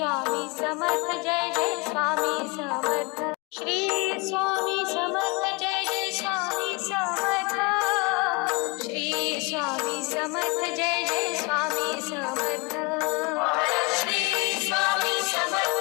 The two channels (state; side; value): quieter; right; 26.9 dB